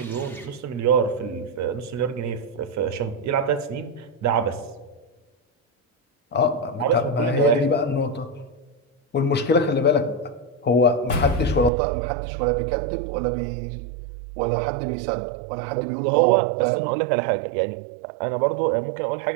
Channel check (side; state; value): left; drops out; at 11.7 s